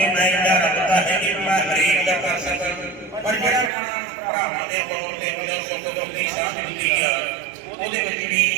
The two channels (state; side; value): drops out; left; at 3.7 s